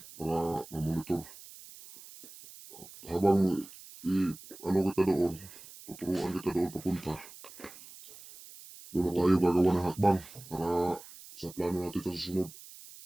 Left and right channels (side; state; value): right; noise; hiss, 18 dB below the sound